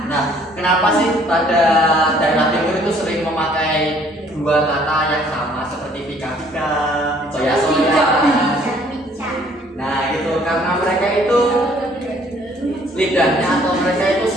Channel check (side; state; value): both; normal; correlation 0.60